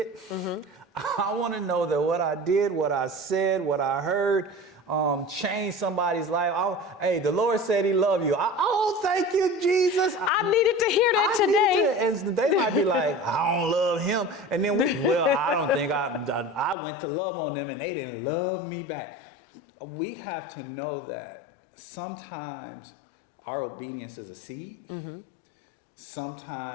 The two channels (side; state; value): right; drops out; at 16.8 s